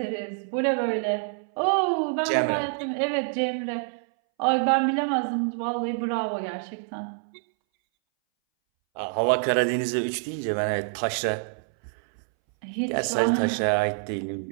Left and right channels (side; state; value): left; silent; 61 dB below the other